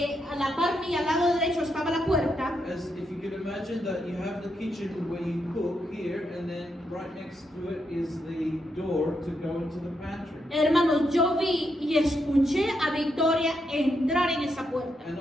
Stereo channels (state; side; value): normal; both; correlation 0.81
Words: a la par mía, al lado derecho, estaba la puerta. As if you could imagine that you have the kitchen where you cook here, and then right next to it is the door to go into the pantry. Hermanos, yo vi y escuché a Victoria entrar en esa puerta. And